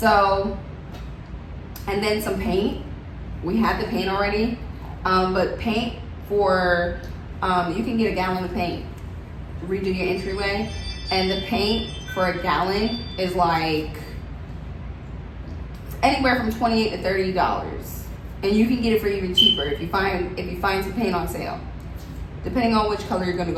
and then some paint. We had the paint already, but paint for, you can get a gallon of paint, redo your entryway, and the paint for a gallon is like anywhere from $28 to $30, and you can get it for even cheaper if you find some paint on sale, depending on which color you're going to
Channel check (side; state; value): both; identical; correlation 1.00